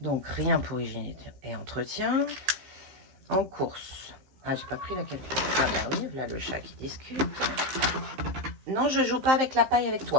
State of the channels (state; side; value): late; left; 15 ms